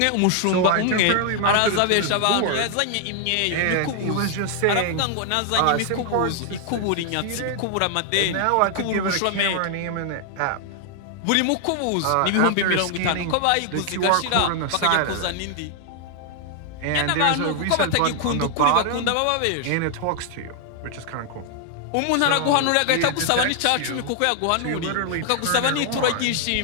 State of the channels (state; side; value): different; both; correlation 0.00